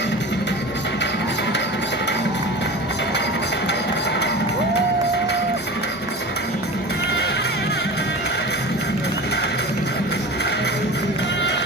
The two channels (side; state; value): both; normal; correlation 0.33